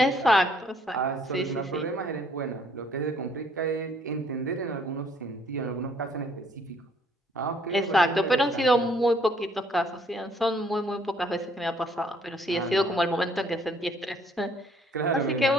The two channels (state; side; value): normal; both; correlation 0.63